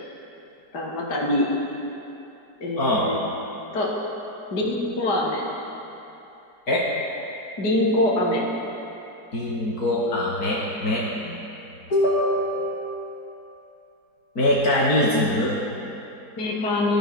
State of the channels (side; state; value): right; late; 4.5 ms